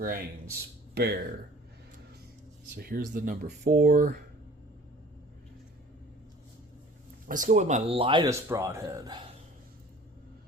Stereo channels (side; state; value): both; normal; correlation 0.48